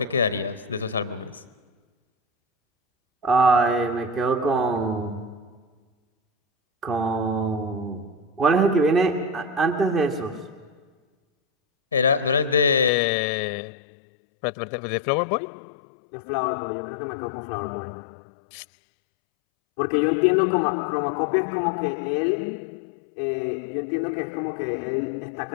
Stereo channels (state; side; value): drops out; right; at 12.9 s